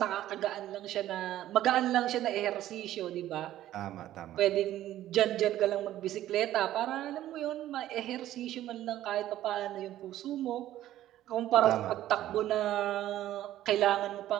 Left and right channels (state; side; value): quieter; left; 13.3 dB